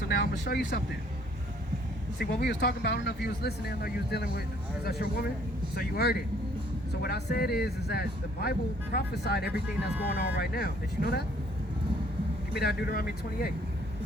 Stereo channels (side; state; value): both; normal; correlation 0.61